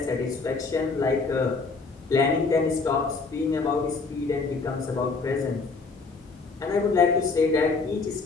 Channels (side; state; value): right; quieter; 4.2 dB